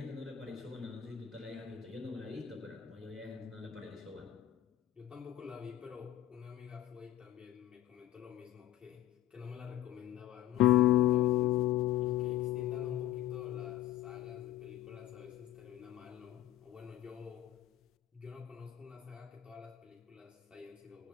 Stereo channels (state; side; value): quieter; right; 13.3 dB